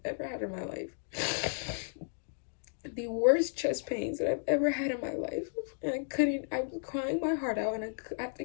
ever had in my life. The worst chest pains that I've ever had in my life. And I was crying my heart out, and I have to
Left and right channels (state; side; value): silent; right; digital silence